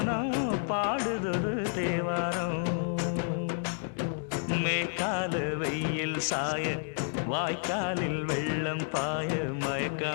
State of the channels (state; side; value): silent; right; digital silence